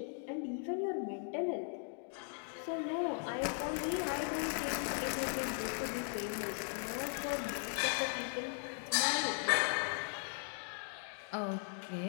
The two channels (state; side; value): silent; right; 52 dB below the other